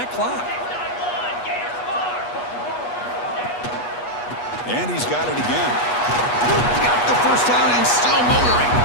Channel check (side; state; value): right; late; 8.3 ms